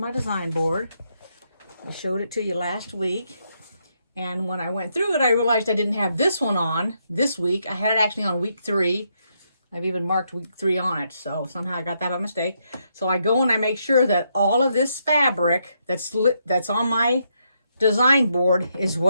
design board. I showed it to you last week. And when I went through it, I realized I didn't have this one on this week. I had it actually on week 3. I've even marked week 3 on it. So somehow I got that by mistake. So I go and I make sure that all of this fabric that's on my design board is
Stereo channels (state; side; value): inverted; both; correlation -0.78